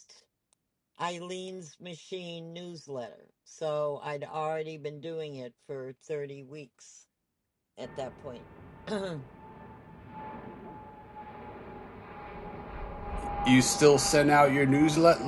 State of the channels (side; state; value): both; identical; correlation 1.00